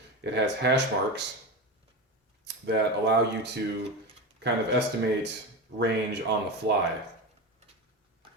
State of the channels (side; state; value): both; normal; correlation 0.20